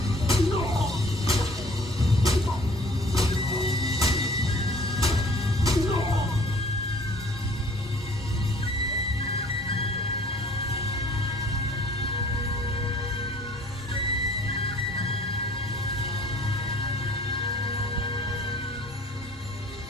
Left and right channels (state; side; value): normal; both; correlation 0.53